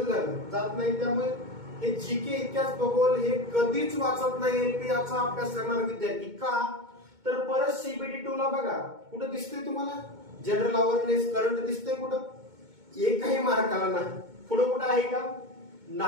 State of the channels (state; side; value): late; left; 2.2 ms